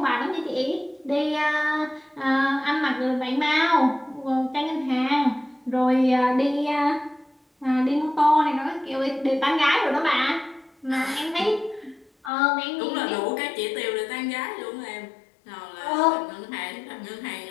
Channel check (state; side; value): drops out; right; at 12.3 s